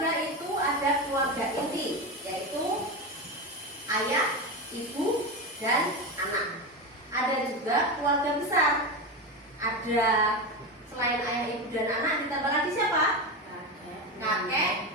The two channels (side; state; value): both; normal; correlation 0.18